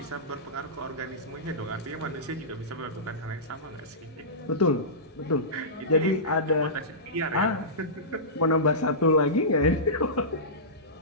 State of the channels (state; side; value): normal; both; correlation -0.19